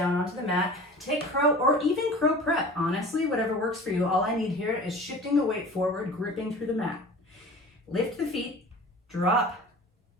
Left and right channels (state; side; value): normal; both; correlation 0.40